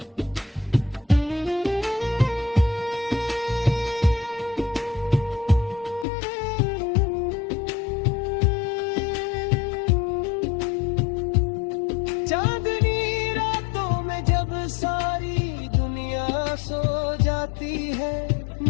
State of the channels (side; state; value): right; drops out; at 6.1 s